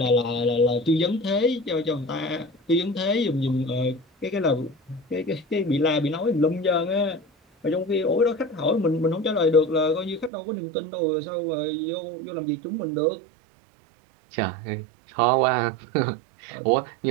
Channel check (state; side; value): drops out; left; at 10.3 s